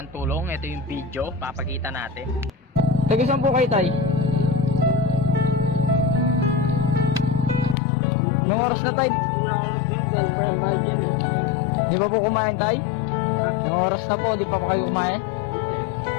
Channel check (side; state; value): right; drops out; at 7.8 s